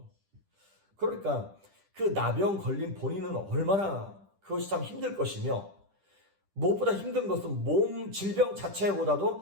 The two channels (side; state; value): left; late; 10 ms